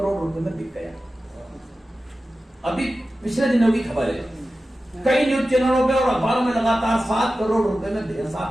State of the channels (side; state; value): both; normal; correlation 0.94